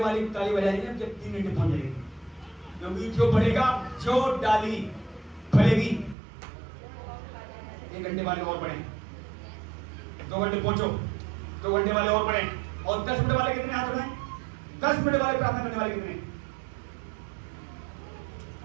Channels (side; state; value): left; drops out; at 6.2 s